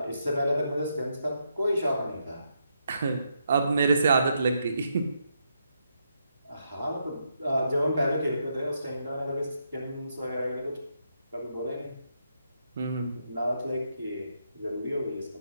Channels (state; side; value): inverted; both; correlation -0.80